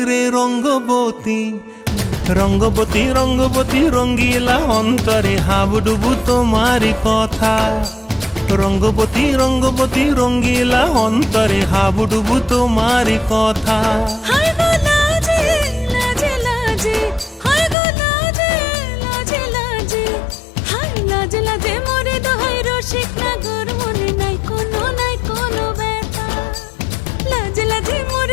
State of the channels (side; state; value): right; drops out; at 17.8 s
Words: রে রঙ্গবতী, রঙ্গবতী রঙ্গবতী রঙ্গিলা অন্তরে হাবুডুবু তোমারি কথা। রঙ্গবতী রঙ্গবতী রঙ্গিলা অন্তরে হাবুডুবু তোমারি কথা। হায় গো লাজে লাজে লাজে, হায় গো লাজে লাজে লাজে, হায় লাজে লাজে মোরে দোহাই রসিক নাগর মনে নাই কোনো ব্যথা। লাজে লাজে